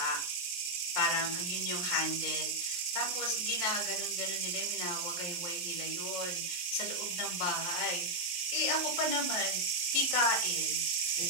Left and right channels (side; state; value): right; late; 23 ms